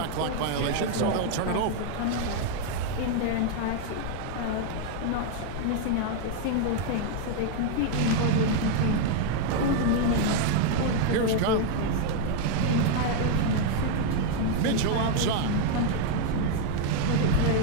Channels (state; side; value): different; both; correlation 0.00